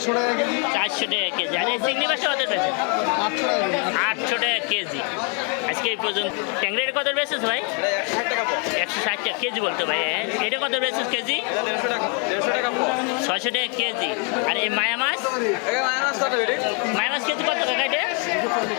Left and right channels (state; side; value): quieter; right; 37.4 dB